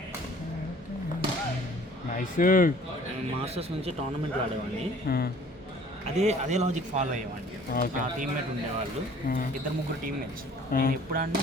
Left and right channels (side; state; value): both; normal; correlation 0.52